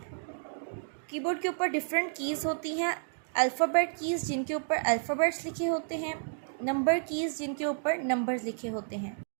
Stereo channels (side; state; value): left; silent; digital silence